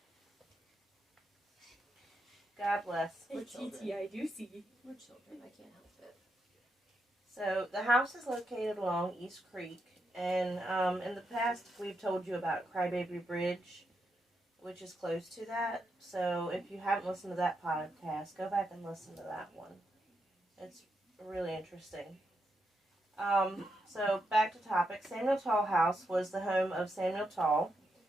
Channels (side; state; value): both; normal; correlation 0.83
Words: God bless. We're children. I do see. We're children, I can't help it. So the house is located along East Creek And in the past, we've told you about Crybaby Bridge, which is close to that. So if you haven't listened to that podcast, go back and listen to that one. It's really interesting. So back to topic. Samuel Tull House was the home of Samuel Tull.